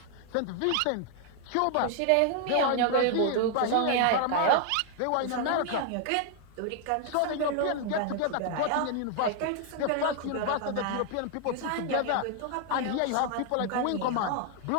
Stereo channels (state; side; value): different; both; correlation 0.00